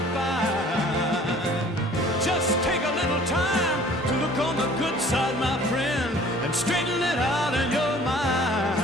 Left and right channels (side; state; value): both; normal; correlation 0.52